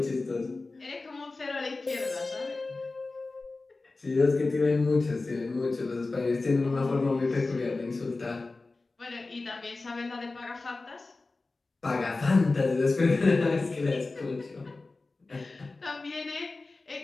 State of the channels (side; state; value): right; quieter; 3.5 dB